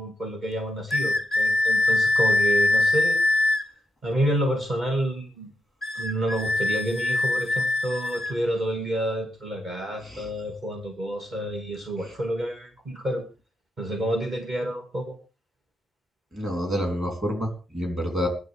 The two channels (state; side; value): normal; both; correlation 0.84